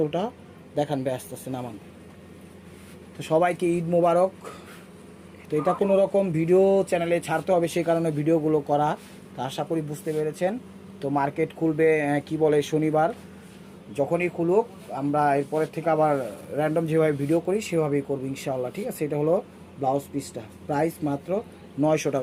দেখান ভাই, আস্তে আস্তে নামান। তো সবাইকে ঈদ মোবারক। তো এটা কোনো রকম ভিডিও চ্যানেলে ছাড়তে হবে, সেই কারণে ভিডিওগুলো করা। তো আশা করি বুঝতে পেরেছেন। তো মার্কেট খুলবে কি বলে শনিবার, যখনই খুলুক আমরা এরপরের থেকে আবার র্যান্ডম যেভাবে ভিডিও করি সেভাবেই করবো ইনশাআল্লাহ, ঠিক আছে। এটা হলো ব্লাউজ পিসটা, প্রাইস মাত্র 900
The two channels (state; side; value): identical; both; correlation 1.00